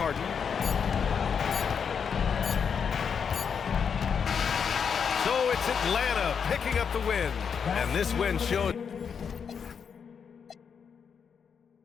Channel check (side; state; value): right; quieter; 6.7 dB